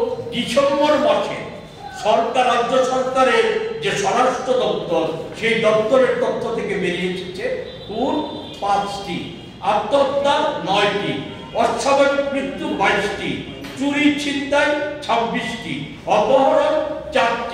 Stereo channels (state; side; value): identical; both; correlation 1.00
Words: ডিসেম্বর মাসে সরকার, রাজ্য সরকারের যে স্বরাষ্ট্র দপ্তর, সেই দপ্তরের তথ্য থেকে বেরিয়ে এসেছে খুন 5টি, আত্মহত্যা 9টি, অস্বাভাবিক মৃত্যু 22টি, চুরি ছিনতাই 26টি, অপহরণ